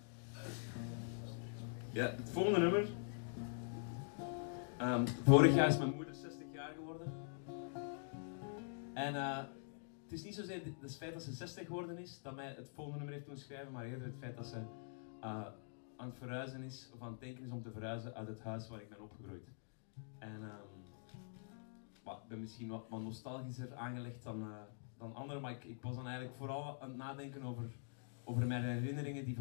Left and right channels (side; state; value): right; silent; digital silence